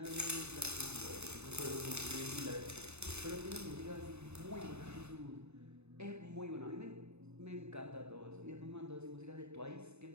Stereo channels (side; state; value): left; late; 0.81 ms